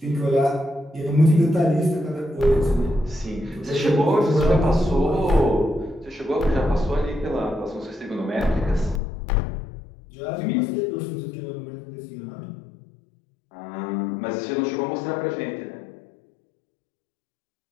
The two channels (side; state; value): right; drops out; at 9.0 s